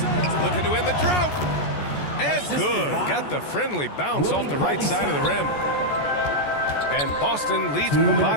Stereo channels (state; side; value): late; right; 14 ms